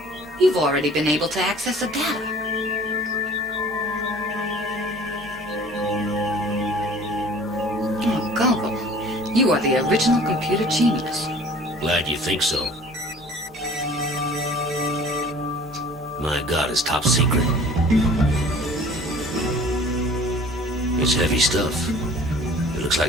You've already been able to access the data. Oh, Gogol, you are the original computer genius. Glad you think so. My God, it's top secret. It's heavy stuff. It looks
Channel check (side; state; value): both; normal; correlation 0.48